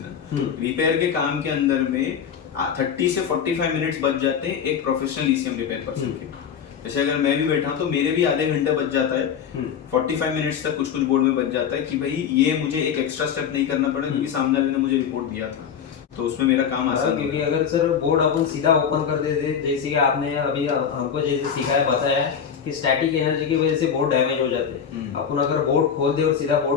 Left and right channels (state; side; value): quieter; right; 7.6 dB